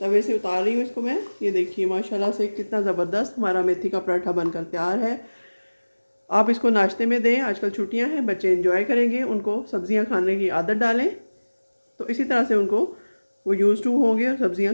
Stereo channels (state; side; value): inverted; both; correlation -1.00